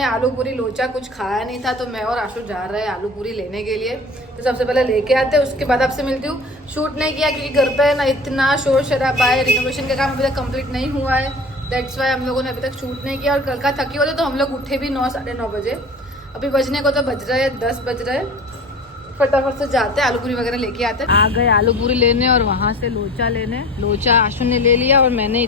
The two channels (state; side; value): normal; both; correlation 0.38